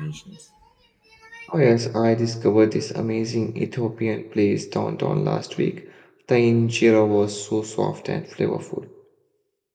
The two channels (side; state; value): both; identical; correlation 1.00